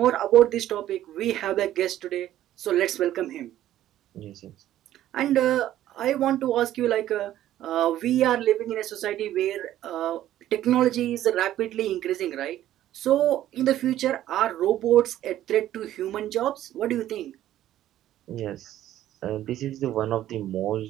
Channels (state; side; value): quieter; left; 12.9 dB